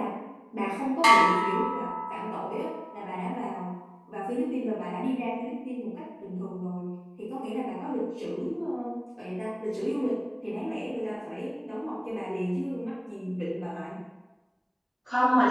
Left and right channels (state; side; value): identical; both; correlation 1.00